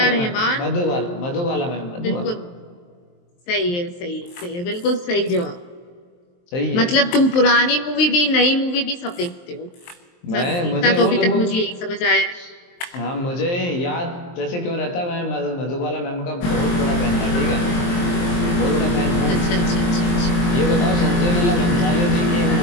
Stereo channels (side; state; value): right; late; 23 ms